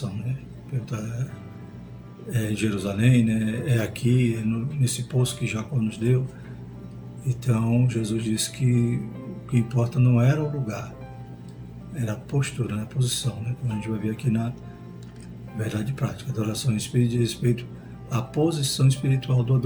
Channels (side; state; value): both; identical; correlation 1.00